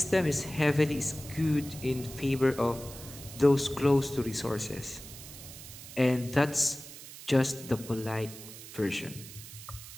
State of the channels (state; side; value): noise; right; hiss, 14 dB below the sound